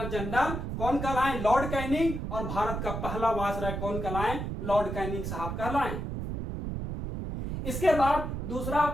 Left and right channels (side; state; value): right; noise; rumble, 4 dB below the sound